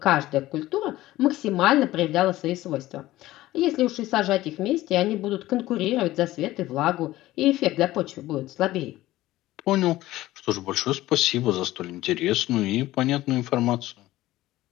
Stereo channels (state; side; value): quieter; right; 16.3 dB